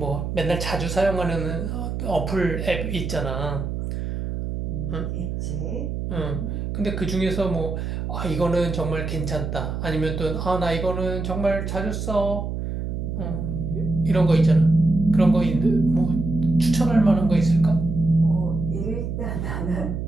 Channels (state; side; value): noise; right; hum, 4 dB below the sound